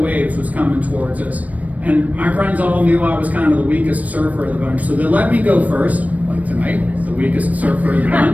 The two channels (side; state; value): left; late; 0.072 ms